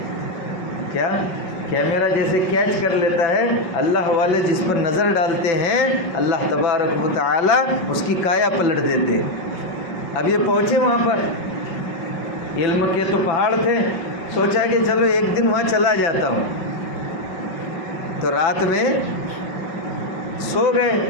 کیا؟ کیمرہ جیسے کیچ کر لیتا ہے، اللہ والے جس پر نظر ڈالتے ہیں اللہ تبارک و تعالی اس کی کایا پلٹ دیتے۔ اب یہ پہنچے وہاں پر، علم کے تو پہاڑ تھے، سوچا کہ چلو ایک دن وہاں چلا جاتا ہوں، تو رات میں سو گئے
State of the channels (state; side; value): late; right; 5.4 ms